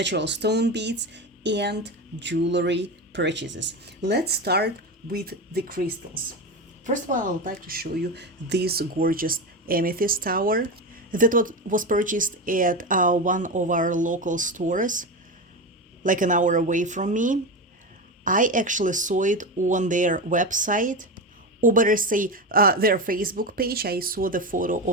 stone beads, and jewelry purchases. Let's start with the crystals. First of all, I would like to show you this gorgeous amethyst tower that was purchased at one of our local stores, like an hour away from me. I actually saw it on their website, or better say, their Facebook page. I saw the photo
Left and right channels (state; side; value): normal; both; correlation 0.19